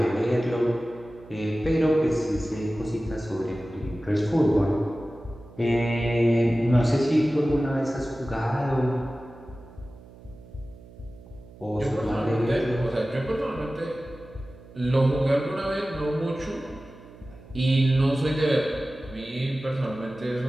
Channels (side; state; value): right; noise; hum, 21 dB below the sound